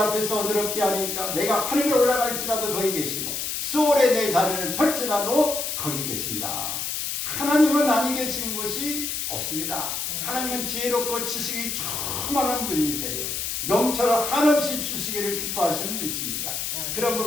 어디로 피하리까 내가 하늘에 올라갈지라도 거기 계시고 수월에 내 자리를 펼지라도 거기 계신다. 하나님은 아니 계신 곳이 없습니다. 하나님은 지혜롭고 지식이 충만한 분이세요. 명철을 한없이 주시기를 기뻐하시는 분이십니다.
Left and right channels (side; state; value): left; noise; hiss, 3 dB below the sound